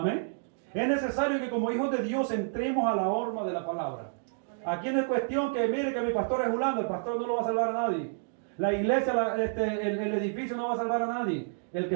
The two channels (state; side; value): silent; left; digital silence